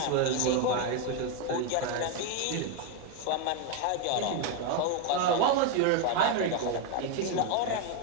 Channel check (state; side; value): different; both; correlation 0.02